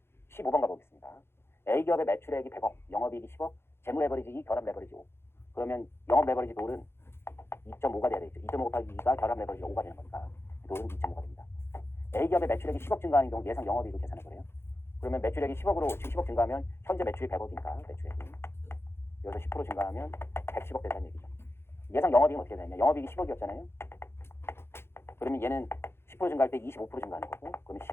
15번 가보겠습니다. A기업의 매출액이 100억, 영업이익이 10억, 재무 레버리지 2, 결합 레버리지 5. 그러면 영업 레버리지 돌은 2.5가 돼야 되겠죠. 2.5 곱하기 2가 결합 레버리지 5가 되는 거니까 돌은 2.5가 됩니다. A기업의 매출액이 10억 증가하는 경우 예상 영업이익을 계산해 보래요. 그러면 매출액이 10억으로 지금 10억 증가하면 현재 매출이 100억이니까 매출액이 여기서 10% 증가하면 110억 된다는 얘기죠. 예상 영업이익은 어떻게 되냐? 영업이익이 10억이었잖아요. 그러면 얘는 10% 증가할 때 25% 증가하는 거고 그러면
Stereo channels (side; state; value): right; late; 0.12 ms